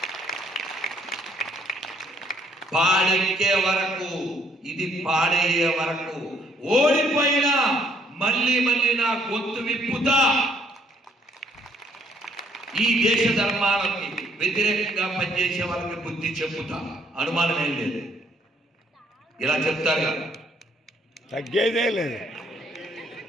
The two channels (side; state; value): both; normal; correlation 0.67